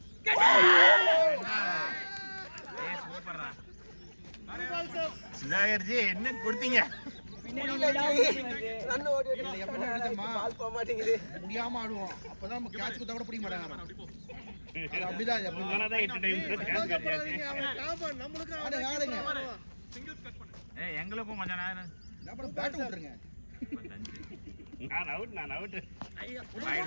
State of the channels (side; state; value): both; inverted; correlation -1.00